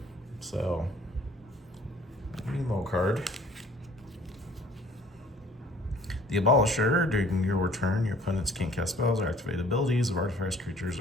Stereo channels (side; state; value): both; normal; correlation 0.54